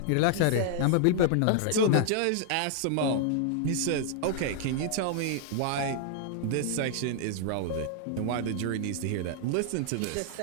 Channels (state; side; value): different; both; correlation -0.01